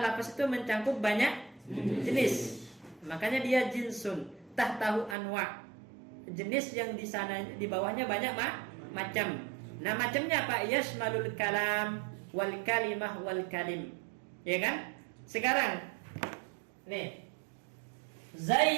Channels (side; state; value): left; drops out; at 5.2 s